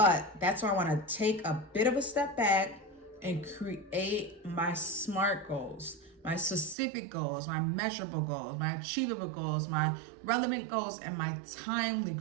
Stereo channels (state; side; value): drops out; left; at 6.8 s